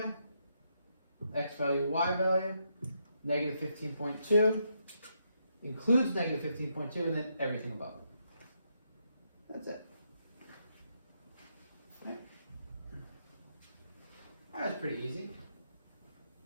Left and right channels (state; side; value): inverted; both; correlation -0.79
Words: X value, y value, negative 15.2. Includes negative 15.2 and then everything above it. That's it. Right. That was pretty easy.